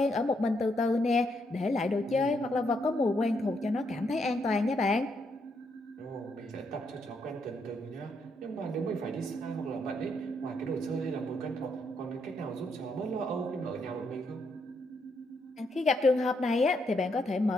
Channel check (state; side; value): normal; both; correlation 0.77